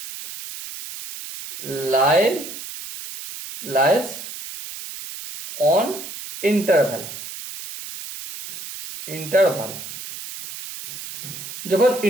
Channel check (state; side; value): noise; right; hiss, 11 dB below the sound